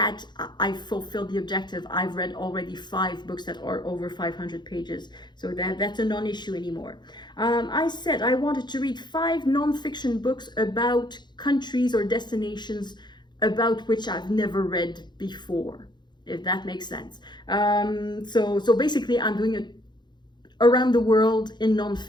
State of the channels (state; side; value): late; right; 0.21 ms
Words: I fulfilled the objective. I've read already 5 books that are over 500 pages. So that's a non-issue anymore. I said I wanted to read 5 non-fiction books about countries or destinations about which I've never read before, if that makes sense. So basically I'm doing it around the world in